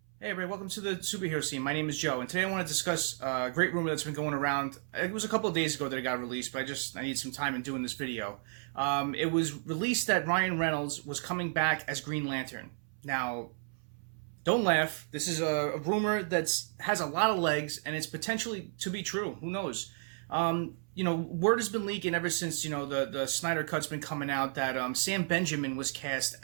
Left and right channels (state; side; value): silent; left; 56 dB below the other